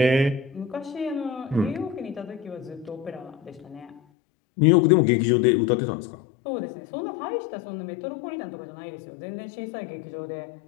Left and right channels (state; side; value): drops out; right; at 4.0 s